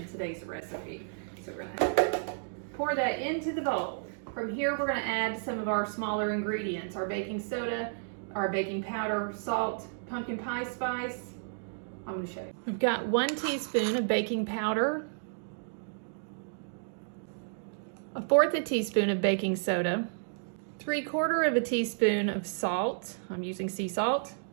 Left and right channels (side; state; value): left; silent; digital silence